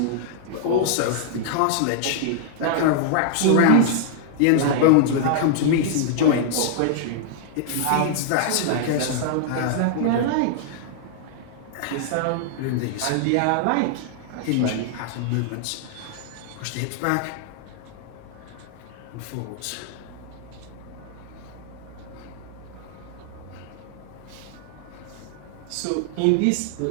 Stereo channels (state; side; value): different; both; correlation -0.01